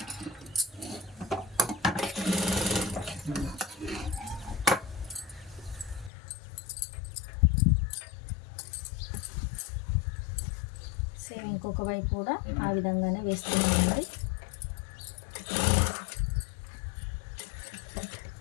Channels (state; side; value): drops out; right; at 6.1 s